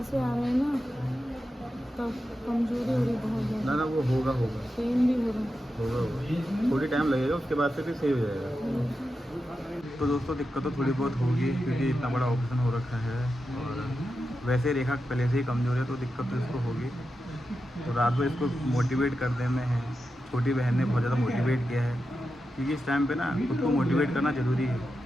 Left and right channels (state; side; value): normal; both; correlation 0.89